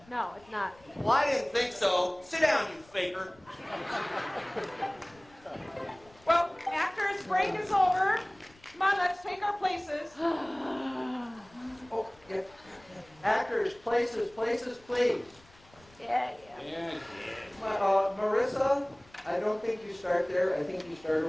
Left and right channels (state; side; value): noise; left; rumble, 28 dB below the sound